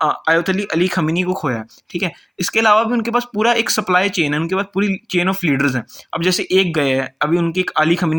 आयतुल्लाह अली खमीनी को खोया है। ठीक है, इसके अलावा भी उनके पास पूरा एक सप्लाई चेन है, उनके पास पूरी चेन ऑफ लीडर्स हैं। अब जैसे एक गए हैं, अभी उनकी एक अली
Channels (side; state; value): both; identical; correlation 1.00